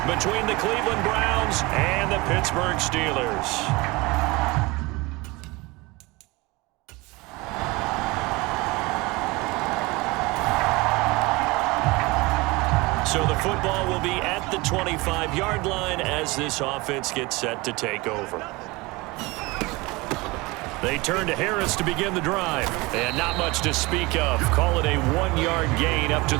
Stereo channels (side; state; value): left; quieter; 23.5 dB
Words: between the Cleveland Browns and the Pittsburgh Steelers. So the football will be at the 25-yard line as this offense gets set to take over. They turn to Harris to begin the drive. And not much to speak of. Call it a 1-yard gain up to